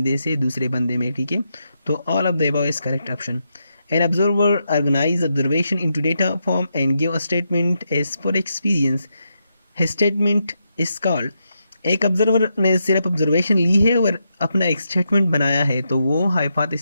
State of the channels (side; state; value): both; inverted; correlation -0.83